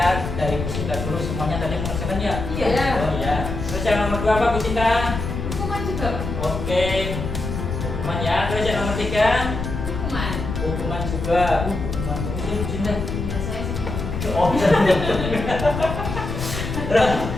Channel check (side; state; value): left; noise; rumble, 5 dB below the sound